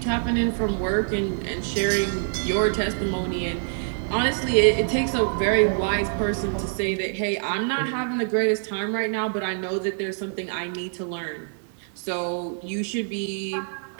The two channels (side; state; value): left; silent; 61 dB below the other